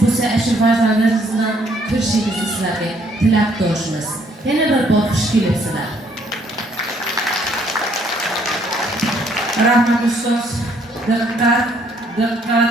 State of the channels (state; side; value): normal; both; correlation 0.66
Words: bo'lsa, shu farzandlaringiz bilan ko'rishingizni sizlarga tilakdoshmiz. Yana bir bor xush kelibsizlar. Rahmat ustoz. Diqqat,